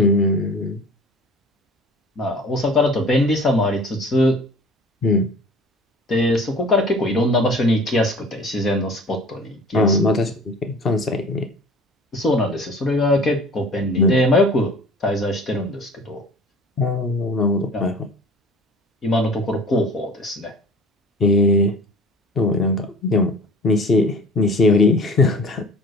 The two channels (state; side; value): normal; both; correlation 0.44